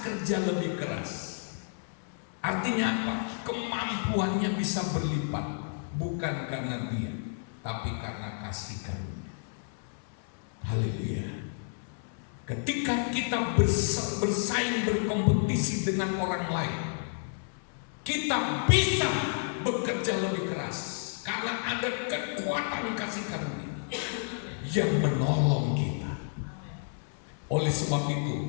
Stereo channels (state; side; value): silent; right; 57 dB below the other